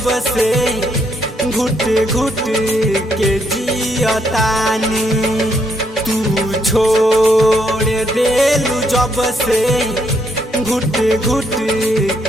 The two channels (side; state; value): both; normal; correlation 0.74